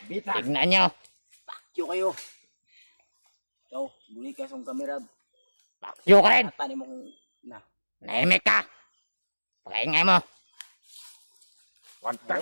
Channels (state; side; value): inverted; both; correlation -1.00